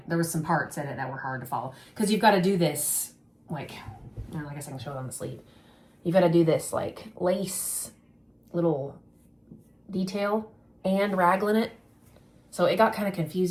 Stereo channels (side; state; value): both; identical; correlation 1.00